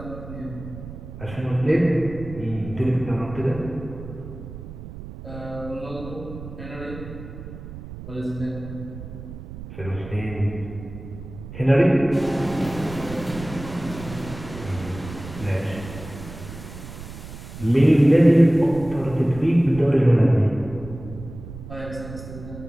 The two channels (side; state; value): right; noise; rumble, 12 dB below the sound